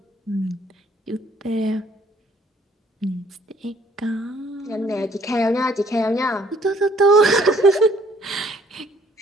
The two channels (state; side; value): normal; both; correlation 0.61